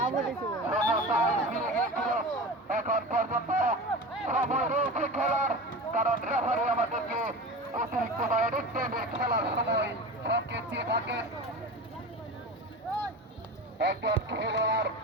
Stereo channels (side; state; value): both; normal; correlation 0.31